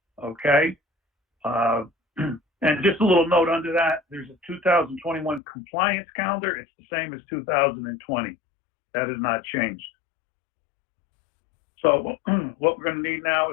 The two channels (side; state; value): right; drops out; at 5.4 s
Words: Okay. And just a little note under that, there's a 2021 compliance calendar. It's the same as 2020. That has not changed. So what we're going to need now